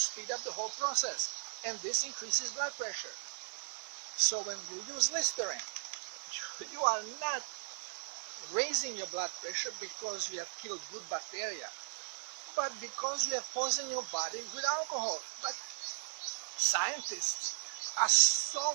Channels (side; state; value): left; silent; 53 dB below the other